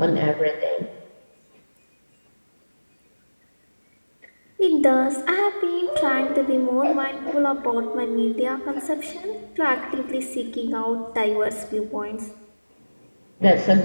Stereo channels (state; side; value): inverted; both; correlation -1.00